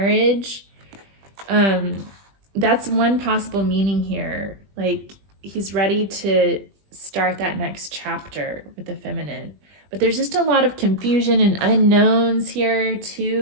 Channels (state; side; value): late; left; 20 ms